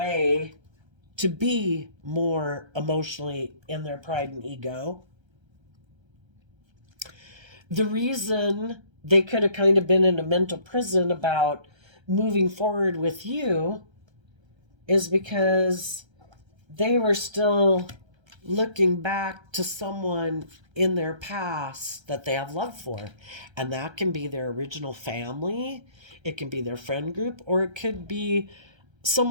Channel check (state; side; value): late; left; 1.3 ms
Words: to be more emotionally in their pride and ego. The reason they could have kind of been in a mental prison about moving forward with you is because they were still looking back to someone in their past that they have love for. And that can be their original family, it can be their friend group, or it could be